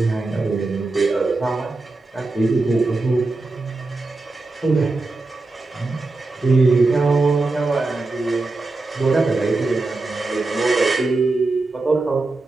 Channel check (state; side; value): quieter; left; 3.4 dB